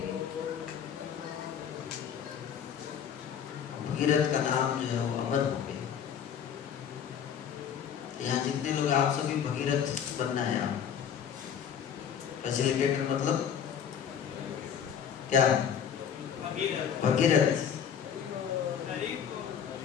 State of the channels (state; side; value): quieter; right; 8.1 dB